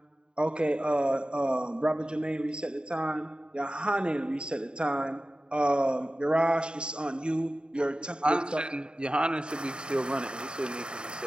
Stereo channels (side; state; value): left; late; 0.050 ms